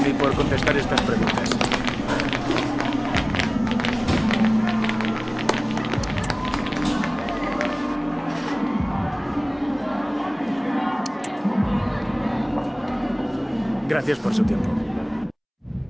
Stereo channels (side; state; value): both; identical; correlation 1.00